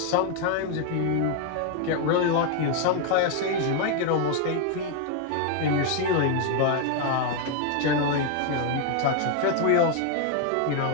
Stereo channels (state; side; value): different; both; correlation 0.01